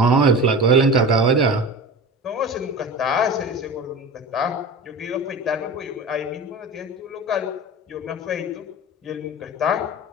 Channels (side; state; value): both; normal; correlation 0.32